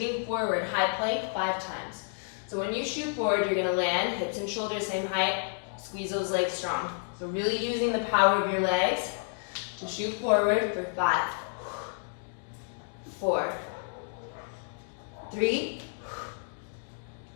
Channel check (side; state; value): right; silent; digital silence